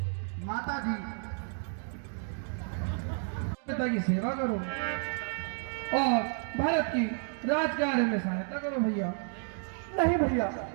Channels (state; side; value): silent; left; 55 dB below the other